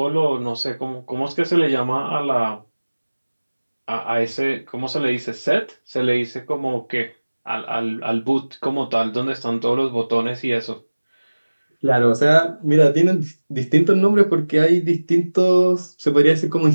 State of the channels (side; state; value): both; inverted; correlation -1.00